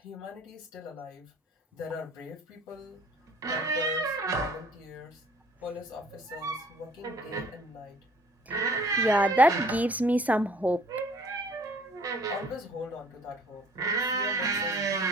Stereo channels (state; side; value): normal; both; correlation 0.55